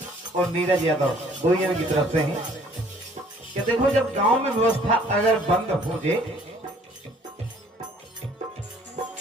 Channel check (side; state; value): both; normal; correlation 0.58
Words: और नीरज यादव दो जन की तरफ से हैं कि देखो जब गांव में व्यवस्था अगर बंद हो जाए,